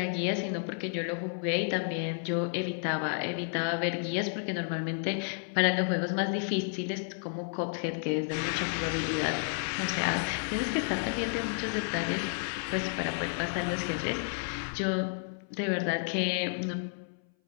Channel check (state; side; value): silent; right; 57 dB below the other